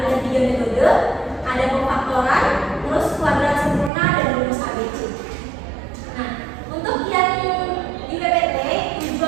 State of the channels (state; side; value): drops out; left; at 3.9 s